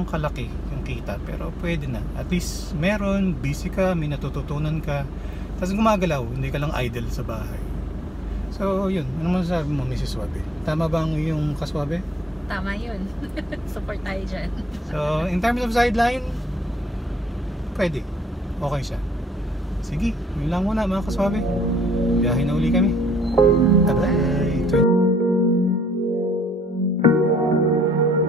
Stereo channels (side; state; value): both; normal; correlation 0.67